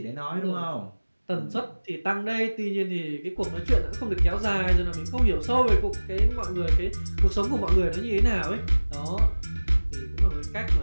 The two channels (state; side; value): inverted; both; correlation -1.00